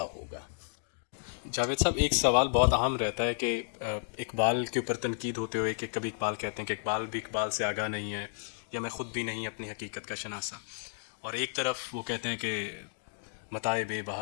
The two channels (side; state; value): right; silent; digital silence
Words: ہوگا. جاوید صاحب، ایک سوال بہت اہم رہتا ہے کہ اقبال کے اوپر تنقید ہوتے ہوئے کہ کبھی اقبال کہتے ہیں کہ اقبال بھی اقبال سے آگاہ نہیں ہے، یا میں خود بھی نہیں اپنی حقیقت کا شناسا، اور ایک طرف وہ کہتے ہیں کہ متاع بے